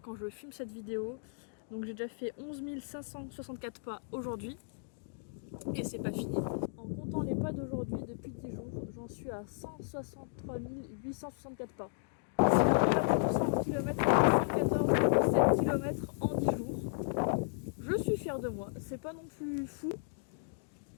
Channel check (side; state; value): right; silent; digital silence